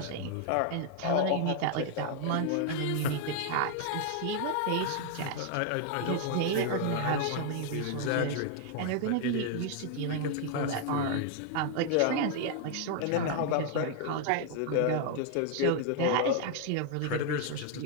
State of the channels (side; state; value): both; different; correlation 0.00